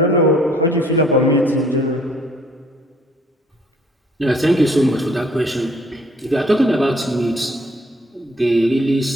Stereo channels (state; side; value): normal; both; correlation 0.59